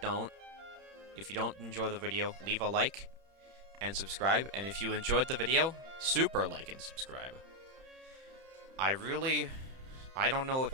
don't. If you don't enjoy the video, leave a like and subscribe. And if you enjoyed the video, super like and subscribe. I don't know if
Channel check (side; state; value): left; late; 31 ms